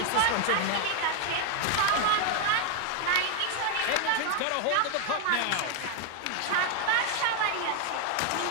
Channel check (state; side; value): different; both; correlation 0.01